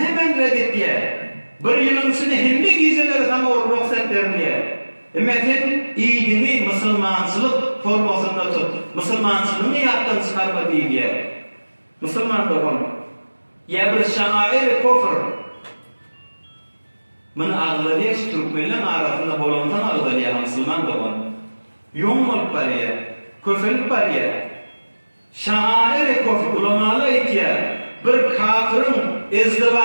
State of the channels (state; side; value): inverted; both; correlation -1.00